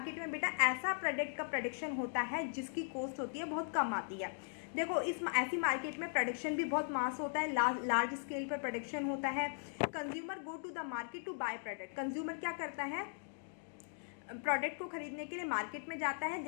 में बेटा ऐसा प्रोडक्ट का प्रोडक्शन होता है जिसकी कॉस्ट होती है बहुत कम आती है। देखो, इस ऐसी मार्केट में प्रोडक्शन भी बहुत मास होता है, लार्ज स्केल पर प्रोडक्शन होता है। Consumer go to the market to buy product. Consumer क्या करता है, प्रोडक्ट को खरीदने के लिए मार्केट में जाता है,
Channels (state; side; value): silent; right; digital silence